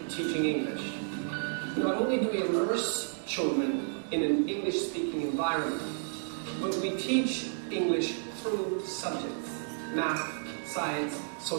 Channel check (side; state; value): left; silent; digital silence